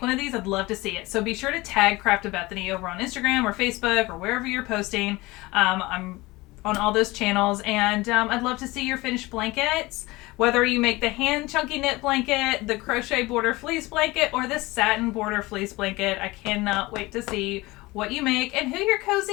of these, I'd love to see it. So be sure to tag Craft with Bethany over on Instagram or Facebook or wherever you're posting. I'm on all those channels, and I'd love to see your finished blankets, whether you make the hand chunky knit blanket, the crochet border fleece blanket, or the satin border fleece blanket. I cannot wait to see what you make and who you're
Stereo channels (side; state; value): right; quieter; 21.3 dB